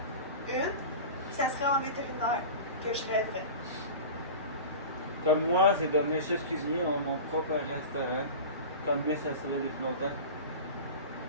une. Ça serait en vétérinaire que je rêverais. Comme moi, c'est devenir chef cuisinier, mon propre restaurant. Comme Miss, ça serait depuis longtemps.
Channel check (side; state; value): both; inverted; correlation -0.33